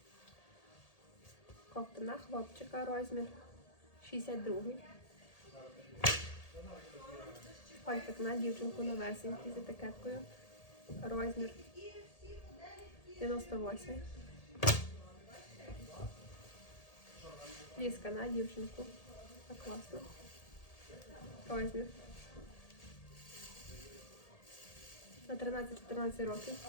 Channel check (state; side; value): late; right; 1.8 ms